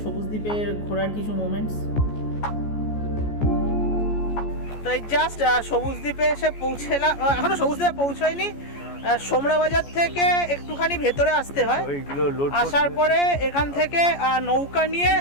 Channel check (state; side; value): late; right; 14 ms